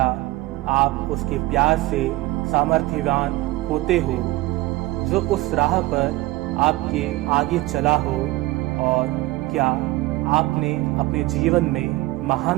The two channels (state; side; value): quieter; left; 19.0 dB